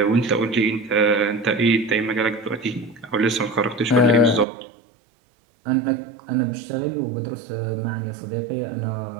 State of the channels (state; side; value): drops out; left; at 4.5 s